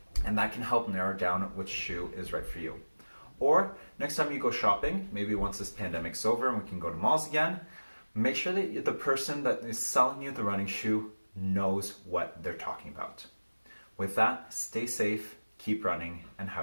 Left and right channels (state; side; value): inverted; both; correlation -1.00